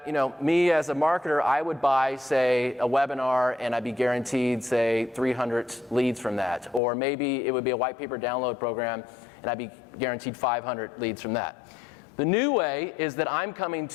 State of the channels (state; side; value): drops out; right; at 6.8 s